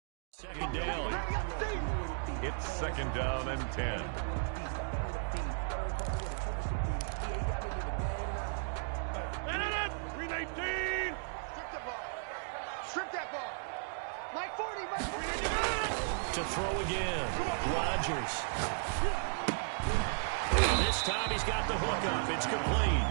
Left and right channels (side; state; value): left; silent; digital silence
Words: Second down. It's second down and 10. 319. Strip that ball. Strip that ball. Like 40. To throw again. Rodgers. This time he's got the hook up. It's complete.